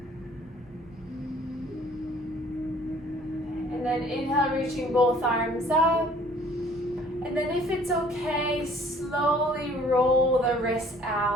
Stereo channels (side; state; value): both; normal; correlation 0.55